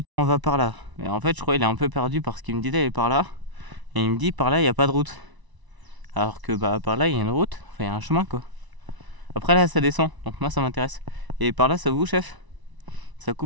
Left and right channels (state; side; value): late; left; 1.0 ms